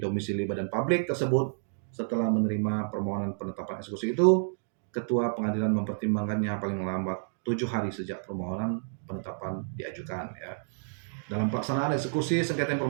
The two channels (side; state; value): left; silent; digital silence